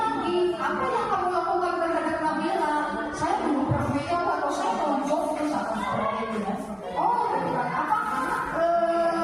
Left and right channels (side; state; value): both; identical; correlation 1.00